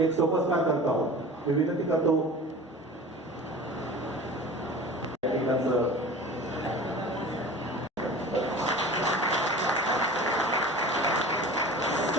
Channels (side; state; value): both; normal; correlation 0.39